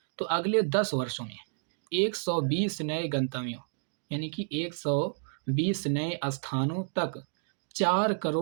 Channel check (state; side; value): silent; left; digital silence